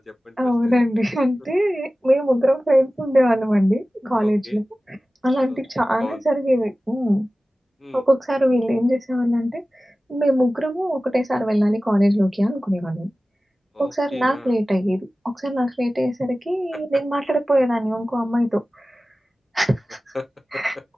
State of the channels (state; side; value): normal; both; correlation 0.96